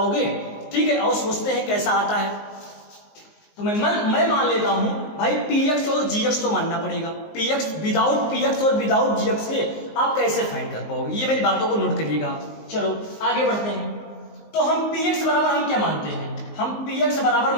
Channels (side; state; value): right; late; 19 ms